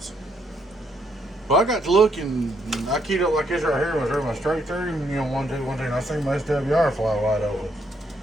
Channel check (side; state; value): both; normal; correlation 0.73